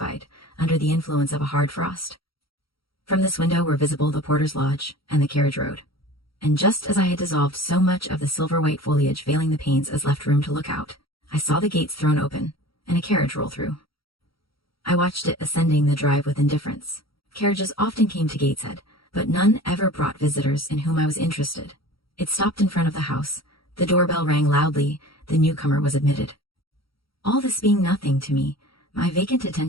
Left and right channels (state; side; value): late; right; 0.75 ms